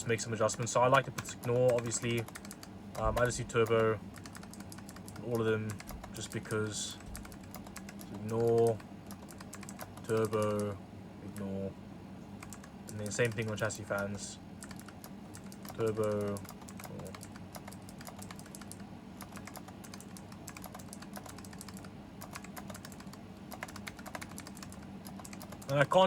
make some adjustments. So I like to put ignore, obviously. I just do turbo, all of them, just because. Ignore, turbo, ignore, and then same thing on chassis fans. Turbo, ignore. And I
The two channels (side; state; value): both; identical; correlation 1.00